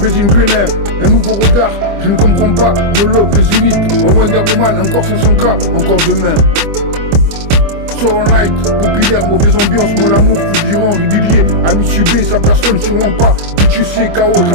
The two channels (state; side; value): late; left; 25 ms